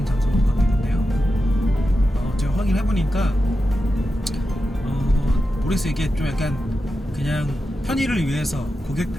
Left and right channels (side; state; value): both; normal; correlation 0.90